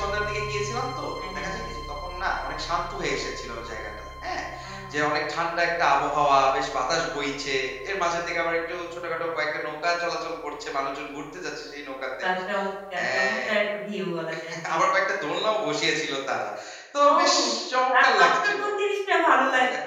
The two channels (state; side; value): identical; both; correlation 1.00